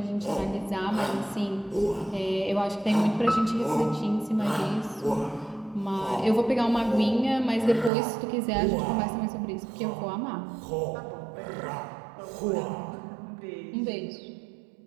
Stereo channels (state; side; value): drops out; left; at 7.9 s